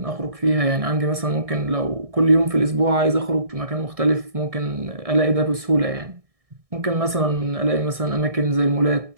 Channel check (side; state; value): left; late; 1.6 ms